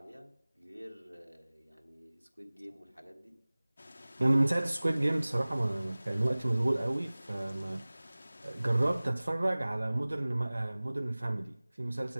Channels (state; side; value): inverted; both; correlation -1.00